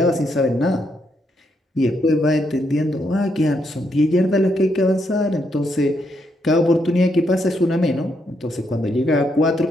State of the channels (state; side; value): normal; both; correlation 0.77